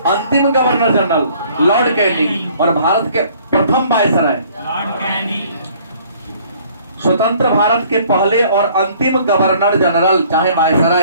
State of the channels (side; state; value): both; inverted; correlation -0.57